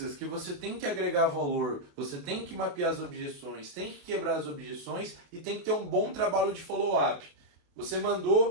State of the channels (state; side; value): late; left; 28 ms